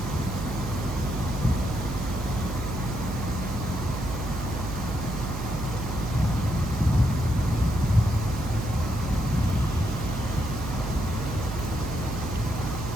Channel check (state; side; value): noise; right; hum, 6 dB below the sound